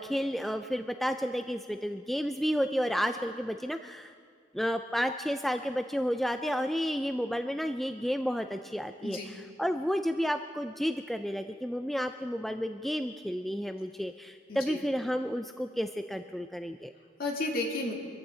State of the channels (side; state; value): both; normal; correlation 0.90